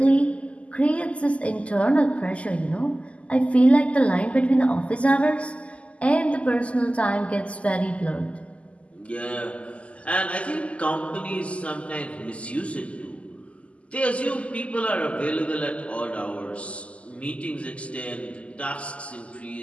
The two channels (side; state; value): right; late; 0.061 ms